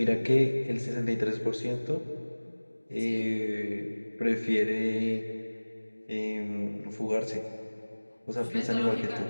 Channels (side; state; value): both; inverted; correlation -1.00